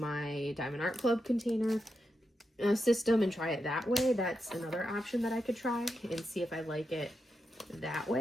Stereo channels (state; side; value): normal; both; correlation 0.86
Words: Diamond Art Club container system and try it that way. That's another option that I could try and see if I like it that